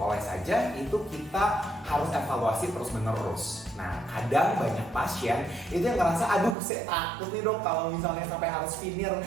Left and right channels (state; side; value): drops out; left; at 6.6 s